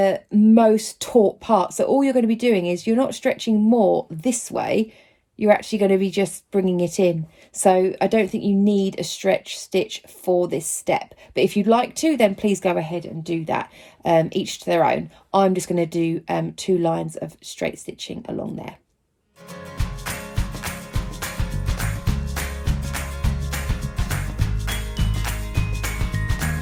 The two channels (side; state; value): both; identical; correlation 1.00